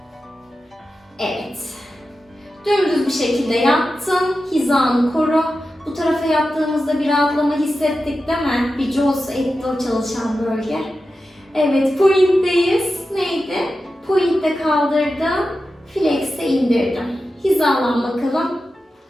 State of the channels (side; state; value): both; normal; correlation 0.92